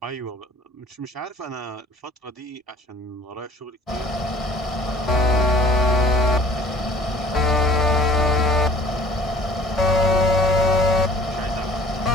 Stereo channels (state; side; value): normal; both; correlation 0.51